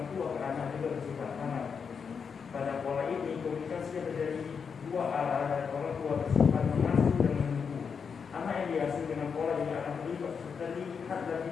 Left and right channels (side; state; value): right; quieter; 6.2 dB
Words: tua ke anak juga bersifat aman. Pada pola ini, komunikasi yang terjadi dua arah dari orang tua bersifat mengasuh dan menunggu. Anak yang diasuh dengan pola ini akan terlihat lebih